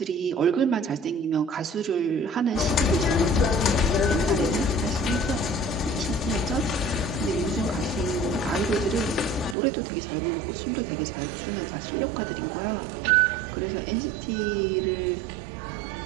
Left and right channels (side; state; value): left; drops out; at 9.6 s